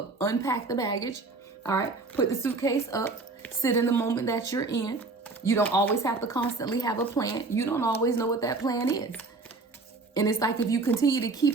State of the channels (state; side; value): quieter; left; 3.7 dB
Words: Unpack the baggage. All right. Put the suitcase up. Sit in the moment that you're in. You don't always have to constantly have a plan. You don't always know what that plan is. And it's like, if you continue to